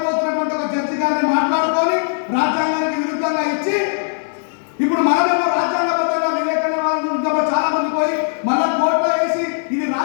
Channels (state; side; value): silent; right; 67 dB below the other